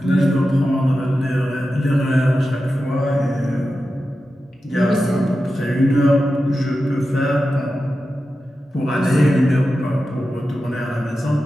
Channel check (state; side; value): normal; both; correlation 0.92